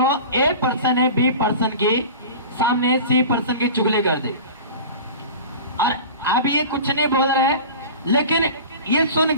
ए पर्सन है बी पर्सन की सामने सी पर्सन की चुगली कर दे, और अब ये कुछ नहीं बोल रहे, लेकिन ये सुन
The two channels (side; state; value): both; inverted; correlation -0.36